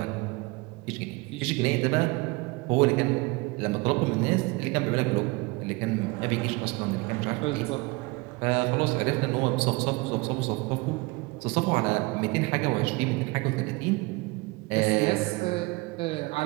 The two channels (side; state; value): left; quieter; 25.0 dB